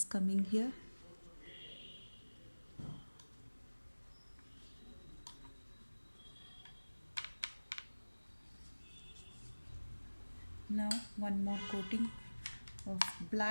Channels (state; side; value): inverted; both; correlation -1.00